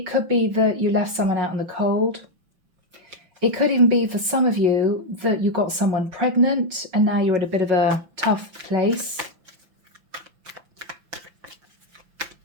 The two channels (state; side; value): late; left; 5.9 ms